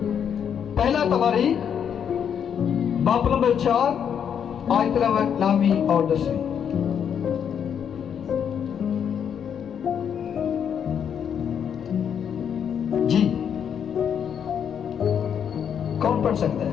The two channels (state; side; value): quieter; right; 8.1 dB